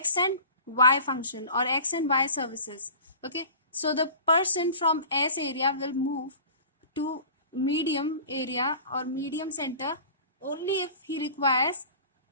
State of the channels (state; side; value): inverted; both; correlation -0.41